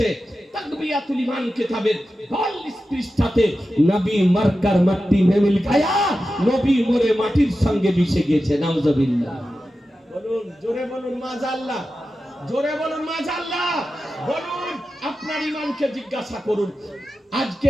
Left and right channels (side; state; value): both; normal; correlation 0.92